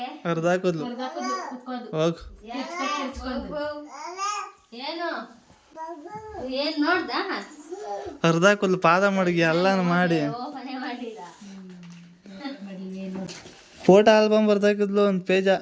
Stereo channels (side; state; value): both; identical; correlation 1.00